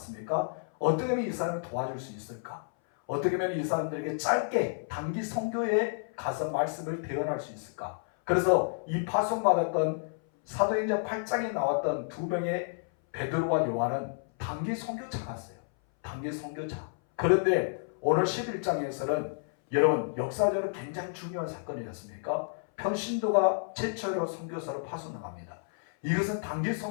어떻게 하면 이 사람을 도와줄 수 있을까? 어떻게 하면 이 사람들에게 짧게 단기 선교에 가서 말씀을 대언할 수 있을까? 그래서 이 파송받았던 사도행전 8장에 나왔던 두 명의 베드로와 요한은 단기 선교차였어요. 단기 선교차. 그런데 오늘 11장에서는 여러분 역사적으로 굉장히 중요한 사건이지 않습니까? 평신도가 최초로 선교사를 파송합니다. 이것은 단기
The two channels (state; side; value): silent; right; 57 dB below the other